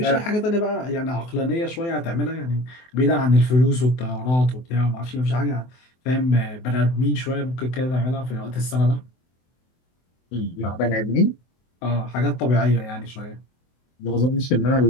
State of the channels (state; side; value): late; right; 24 ms